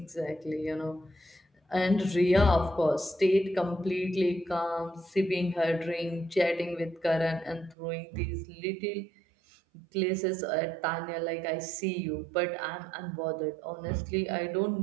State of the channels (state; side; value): drops out; left; at 7.8 s